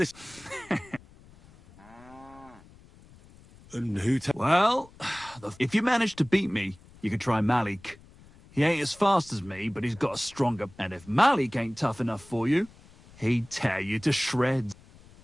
And who... Well, if you manage to beat me, you can try Malik. He ain't as fast as me, but he's got a stronger... And if Malik ain't tough enough for you, he'd tear you to shreds.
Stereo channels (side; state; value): left; noise; rumble, 24 dB below the sound